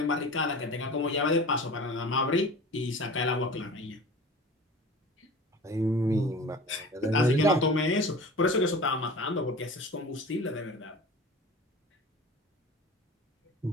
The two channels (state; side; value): normal; both; correlation 0.38